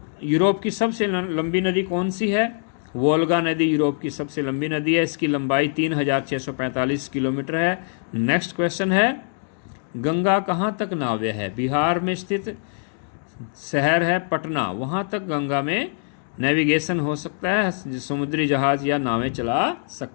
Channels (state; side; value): silent; right; digital silence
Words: की सबसे लंबी नदी कौन सी है? वोल्गा नदी यूरोप की सबसे लंबी नदी है। इसकी लंबाई 3645 किलोमीटर है। नेक्स्ट क्वेश्चन है, गंगा कहाँ तक नाव्य है? बिहार में स्थित शहर है पटना, वहाँ तक गंगा में नेविगेशन हो सकता है, समुद्री जहाज या नावें चला